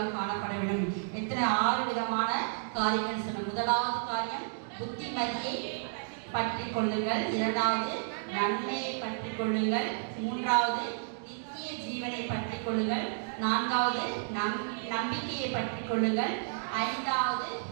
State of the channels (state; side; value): silent; left; digital silence